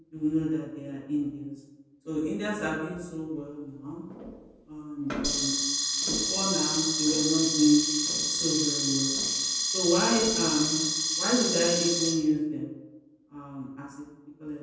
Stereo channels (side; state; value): both; identical; correlation 1.00